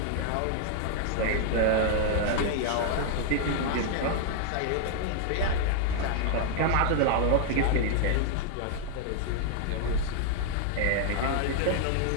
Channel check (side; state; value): both; different; correlation 0.00